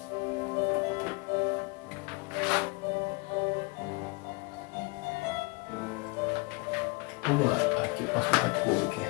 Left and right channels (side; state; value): right; quieter; 28.2 dB